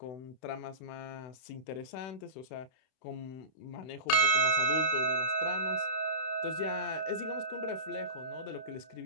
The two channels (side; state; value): right; late; 31 ms